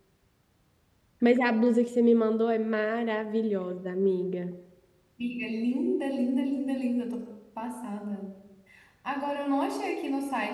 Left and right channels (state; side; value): identical; both; correlation 1.00